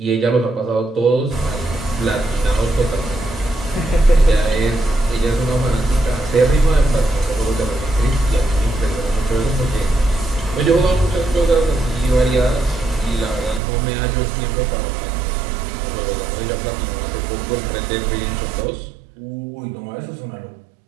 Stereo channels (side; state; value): left; drops out; at 13.6 s